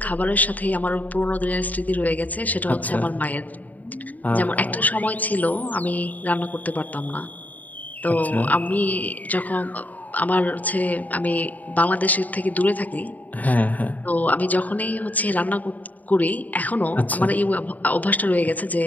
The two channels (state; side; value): late; right; 0.077 ms